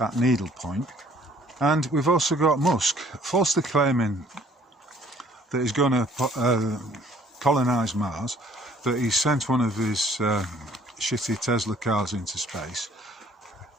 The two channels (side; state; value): both; normal; correlation 0.58